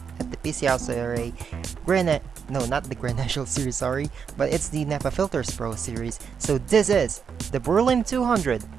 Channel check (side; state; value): left; quieter; 6.6 dB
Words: no, not the Grand National Series, sorry, but it's the NAPA Filters Pro Series. So this is the Berlin 200